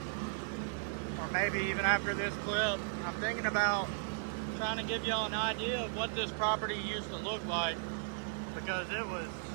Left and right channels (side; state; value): left; silent; digital silence